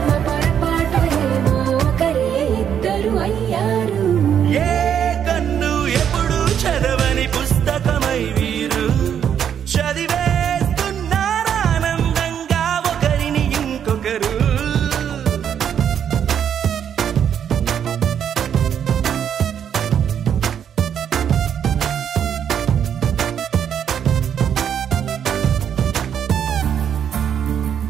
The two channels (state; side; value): quieter; left; 8.7 dB